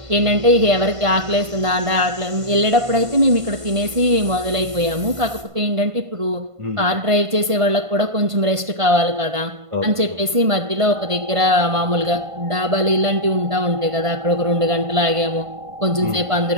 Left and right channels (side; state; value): left; late; 1.5 ms